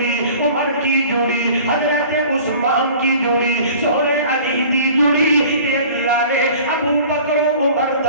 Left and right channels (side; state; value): both; inverted; correlation -0.45